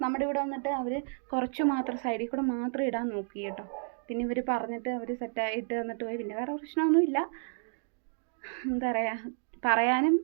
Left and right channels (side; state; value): left; silent; 57 dB below the other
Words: നമ്മുടെ ഇവിടെ വന്നിട്ട് അവർ കുറച്ച് മാത്രം സൈഡിൽ കൂടെ മാത്രം ഇടാൻ നോക്കി കേട്ടോ. പിന്നെ ഇവർ പറഞ്ഞിട്ട് അവർ സെറ്റായിട്ട് തന്നിട്ട് പോയി. പിന്നെ വേറെ പ്രശ്നമൊന്നുമില്ല. എന്താ പറയുക, പറയാനും